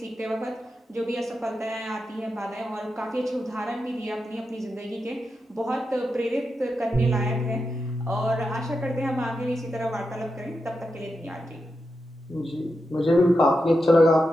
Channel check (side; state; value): both; normal; correlation 0.88